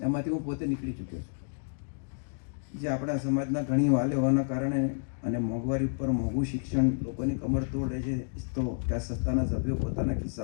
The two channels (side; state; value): right; silent; digital silence